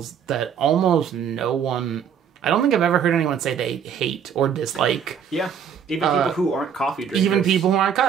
that almost no one... I don't think I've ever heard anyone say they hate or dislike. Yeah, even people who aren't coffee drinkers. Even people who aren't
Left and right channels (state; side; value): quieter; left; 7.9 dB